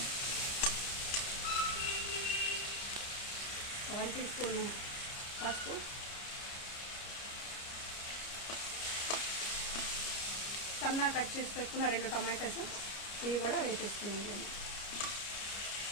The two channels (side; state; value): right; late; 30 ms